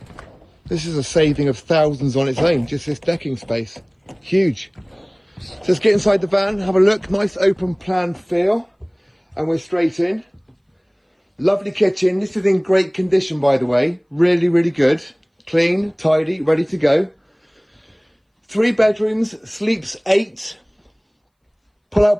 This is a saving of thousands on its own, just this decking space. Huge. So let's get inside the van, have a look. Nice open plan feel. And we're straight in. Lovely kitchen. This is in great condition, by the way. Really, really good. Clean, tidy, ready to go. 3 bedrooms, sleeps 8. Pull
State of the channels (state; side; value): identical; both; correlation 1.00